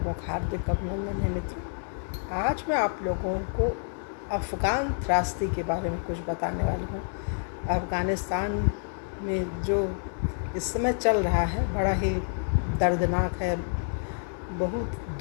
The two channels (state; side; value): silent; right; digital silence